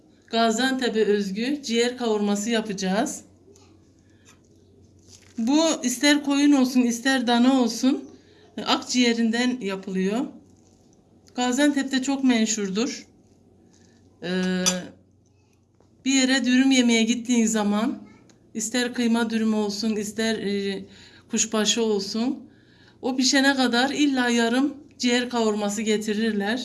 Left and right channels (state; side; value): identical; both; correlation 1.00